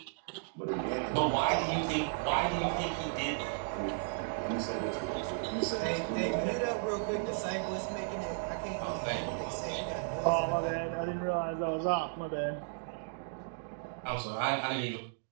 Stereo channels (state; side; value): silent; left; digital silence